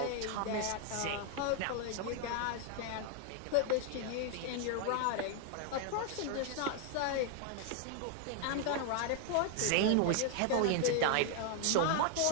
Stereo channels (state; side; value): different; both; correlation 0.00